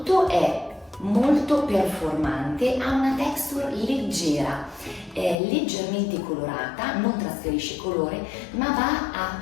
è molto performante, ha una texture leggera, è leggermente colorata, non trasferisce colore, ma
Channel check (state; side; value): drops out; right; at 5.4 s